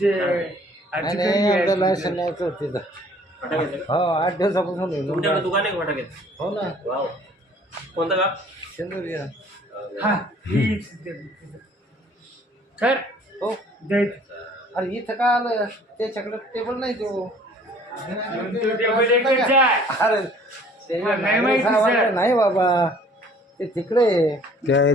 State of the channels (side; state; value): both; normal; correlation 0.54